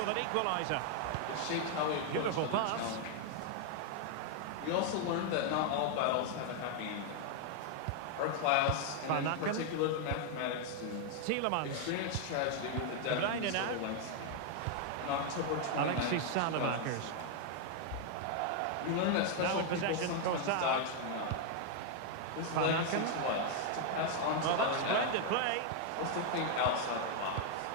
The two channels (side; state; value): both; different; correlation 0.00